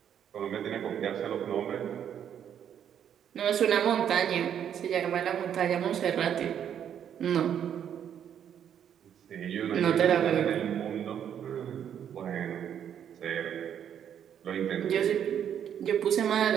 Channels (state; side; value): quieter; left; 9.1 dB